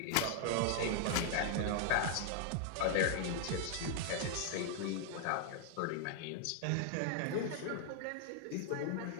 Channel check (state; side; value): different; both; correlation 0.00